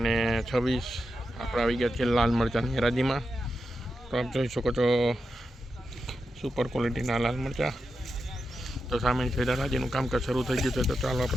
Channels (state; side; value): normal; both; correlation 0.88